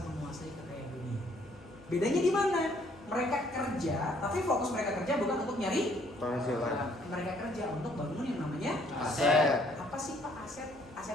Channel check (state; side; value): normal; both; correlation 0.64